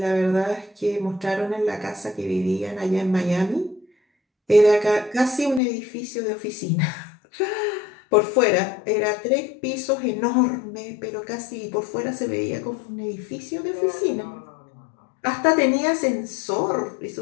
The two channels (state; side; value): drops out; right; at 5.6 s